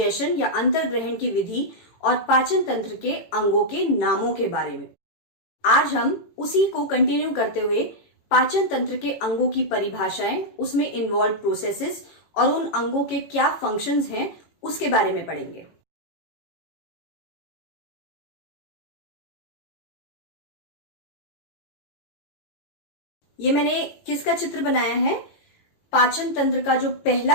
या अंतर्ग्रहण की विधि और पाचन तंत्र के अंगों के नामों के बारे में। आज हम उसी को कंटिन्यू करते हुए पाचन तंत्र के अंगों की परिभाषाएं, उसमें इन्वॉल्व प्रोसेसेस और उन अंगों के क्या फंक्शंस हैं उसके बारे में पढ़ेंगे। ये मैंने किसका चित्र बनाया है? पाचन तंत्र का जो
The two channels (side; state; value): right; late; 18 ms